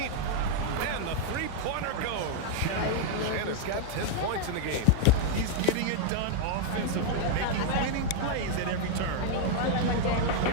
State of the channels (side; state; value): both; different; correlation -0.01